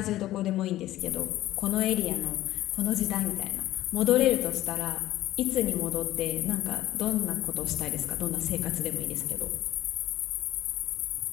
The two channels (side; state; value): right; quieter; 15.0 dB